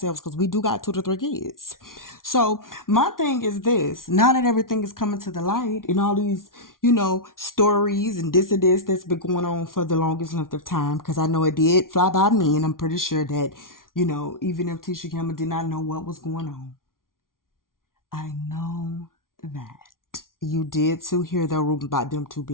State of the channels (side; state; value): right; late; 0.91 ms